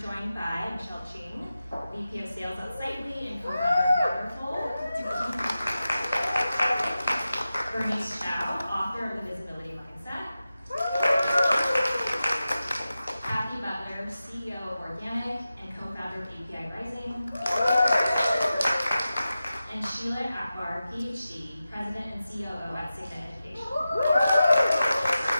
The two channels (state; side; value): inverted; both; correlation -0.93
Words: by Michele Ching, VP of Sales at Signet and co-founder of Butler. Bernice Chao, author of The Visibility Mindset. Cathy, Butler, CEO of Organic and co-founder of AAPI Rising. And Sheila, Akbar, Ph.D., President and COO at Signet Education.